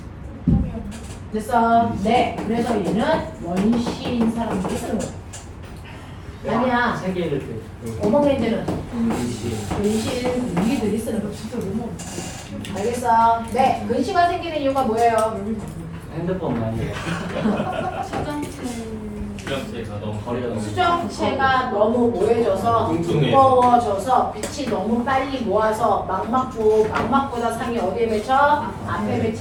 됐어? 네. 그래서 얘는 원시인 사람들이 쓰는 거예요. 아니야. 세계를 오목 렌즈는 근신 우리들이 쓰는 거 진짜 너무 알겠어? 네. 근시가 생기는 이유가 뭐예요? 핸드폰 많이 수정체가 너무 거리가 수정체가 너무 모여져서 두꺼워져서 빛이 너무 빨리 모아서 망막보다 상이 어디에 맺혀? 앞에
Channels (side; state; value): both; identical; correlation 1.00